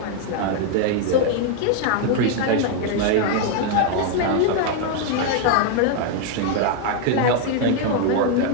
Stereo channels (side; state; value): both; different; correlation 0.00